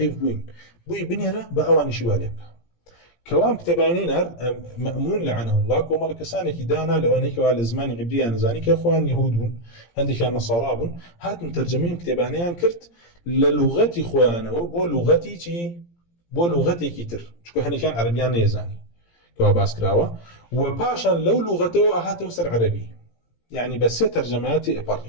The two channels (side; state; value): right; late; 17 ms